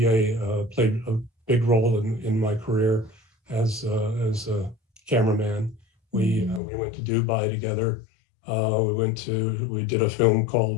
played a big role in my career as a cameraman. We went to Dubai together. We did a film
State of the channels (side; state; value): right; drops out; at 6.6 s